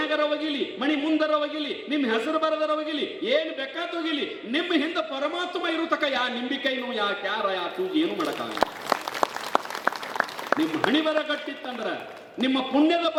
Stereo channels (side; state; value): both; identical; correlation 1.00